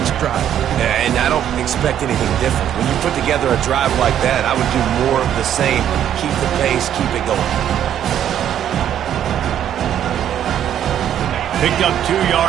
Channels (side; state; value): left; quieter; 10.3 dB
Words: drive. Yeah, and I don't expect anything different. When you put together a drive like that, I would do more of the same. Keep the pace, keep it going. Picked up 2